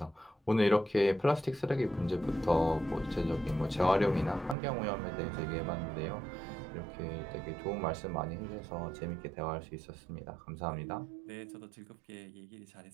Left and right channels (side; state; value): left; drops out; at 4.5 s